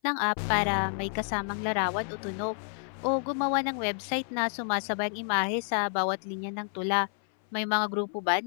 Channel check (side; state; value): right; silent; 58 dB below the other